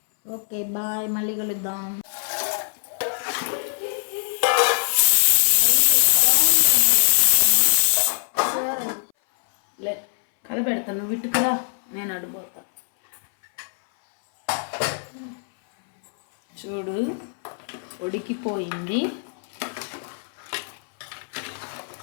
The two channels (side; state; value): right; silent; 61 dB below the other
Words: ఓకే బాయ్, మళ్ళీ కలుద్దాం. కలపెడతాను, నువ్వు ఇటుకురా, నేను అడిపోతా. చూడు ఉడికిపోయింది.